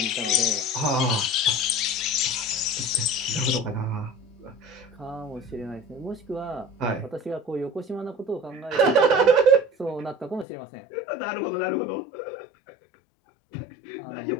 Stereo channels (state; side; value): drops out; right; at 10.5 s